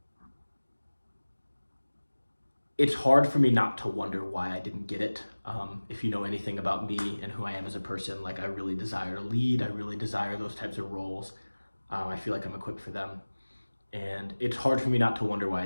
it's hard for me not to wonder why I didn't get it. If you know anything about me and who I am as a person, like I really desire to lead. I really desire those types of roles. I feel like I'm equipped for them. And it's hard for me not to wonder why I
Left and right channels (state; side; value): inverted; both; correlation -1.00